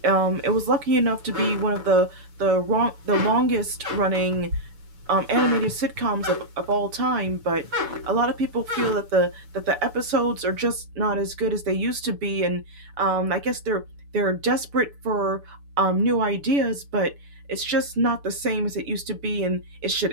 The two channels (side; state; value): left; late; 6.9 ms